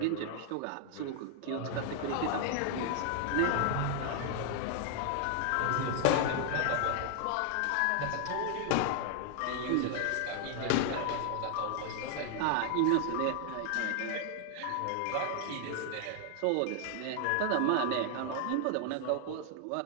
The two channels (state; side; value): different; both; correlation 0.00